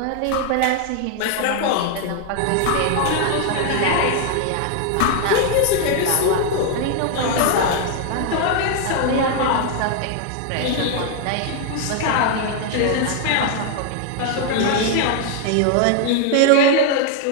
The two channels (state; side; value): different; both; correlation 0.00